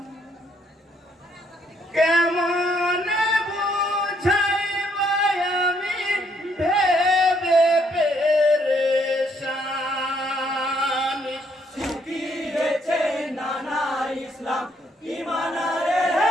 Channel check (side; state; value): both; normal; correlation 0.70